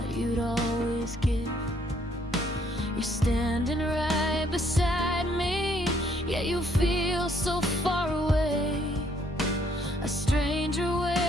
you'd always give. You're standing right beside me, yet you feel so far away. A stranger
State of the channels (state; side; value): normal; both; correlation 0.67